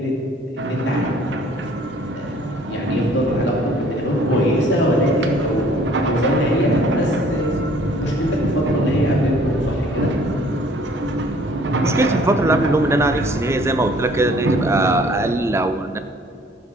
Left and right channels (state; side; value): normal; both; correlation 0.56